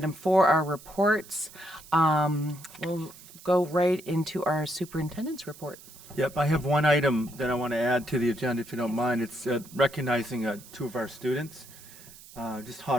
4, our reports. We'll go right into our superintendent's report. Yep, I have one item that I want to add to the agenda, if you don't mind. It's recognizing 2 of our students, just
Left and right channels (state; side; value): noise; right; hiss, 19 dB below the sound